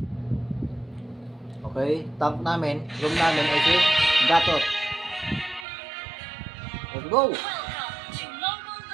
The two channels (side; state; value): left; drops out; at 5.7 s